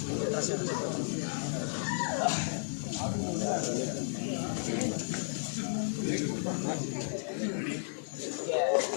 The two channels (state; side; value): silent; right; digital silence